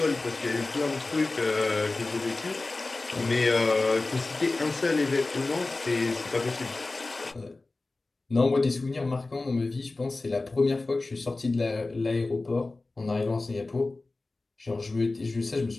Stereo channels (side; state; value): right; quieter; 3.3 dB